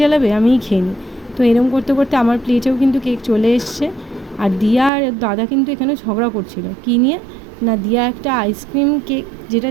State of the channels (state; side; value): drops out; left; at 4.9 s